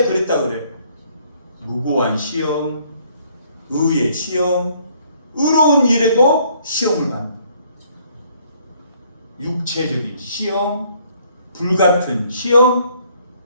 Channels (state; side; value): inverted; both; correlation -0.64